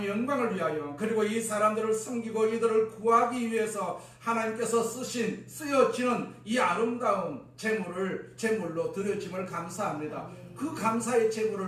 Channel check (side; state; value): both; identical; correlation 1.00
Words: 영광을 위하여 그리고 이 사람들을 섬기고 이들을 구하기 위해서 하나님께서 쓰여지는 이 아름다운 제물로 드려짐을 감사합니다. 아멘. 그 감사의